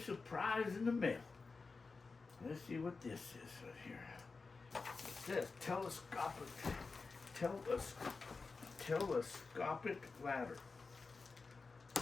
in the mail. Let's see what this is right here. It says telescopic ladder.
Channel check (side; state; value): right; quieter; 4.2 dB